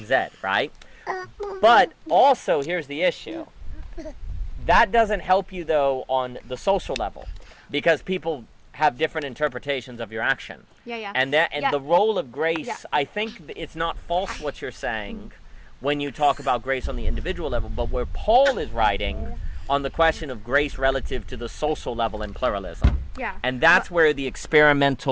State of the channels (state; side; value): identical; both; correlation 1.00